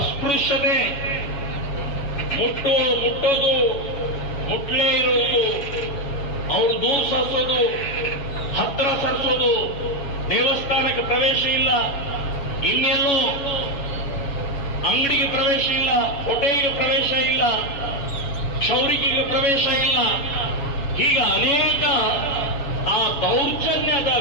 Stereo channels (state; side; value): late; right; 7.1 ms